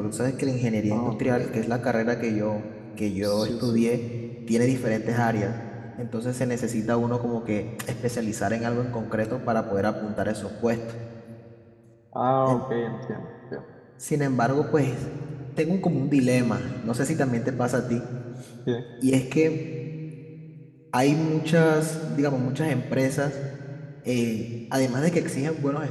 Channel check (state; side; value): identical; both; correlation 1.00